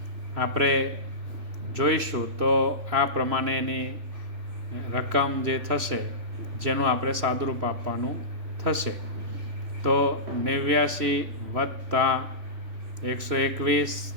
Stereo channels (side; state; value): left; late; 3.0 ms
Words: આપણે જોઈશું તો આ પ્રમાણેની રકમ જે થશે જેનું આપણે સાદુરૂપ આપવાનું થશે. તો 89 + 121